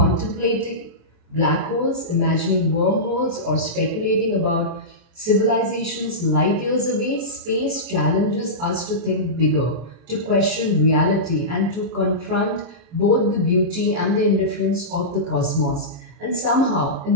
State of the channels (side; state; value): left; late; 23 ms